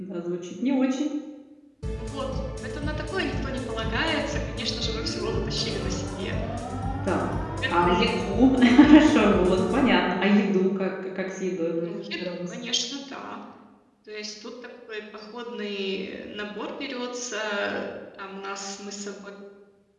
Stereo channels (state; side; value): identical; both; correlation 1.00